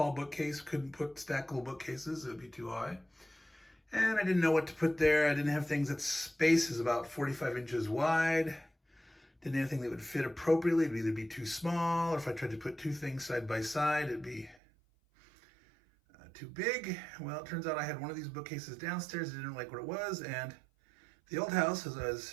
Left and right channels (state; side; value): drops out; left; at 14.6 s